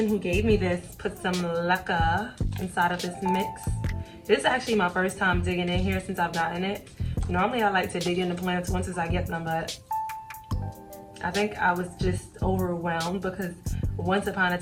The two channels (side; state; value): both; identical; correlation 1.00